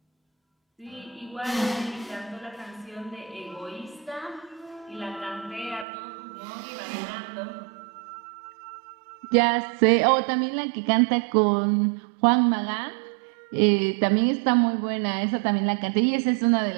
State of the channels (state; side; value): drops out; left; at 5.9 s